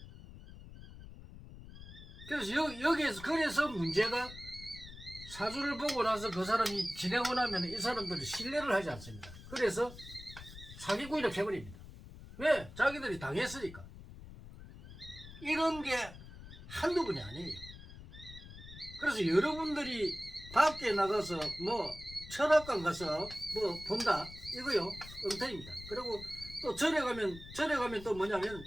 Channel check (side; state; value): left; noise; rumble, 15 dB below the sound